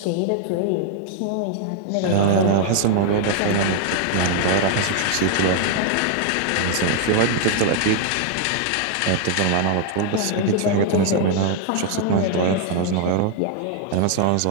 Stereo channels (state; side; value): different; both; correlation 0.00